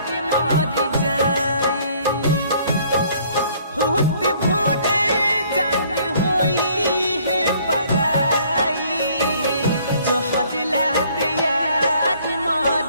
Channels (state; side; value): inverted; both; correlation -0.60